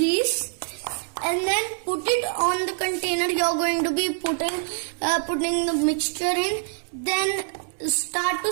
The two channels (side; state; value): left; silent; 62 dB below the other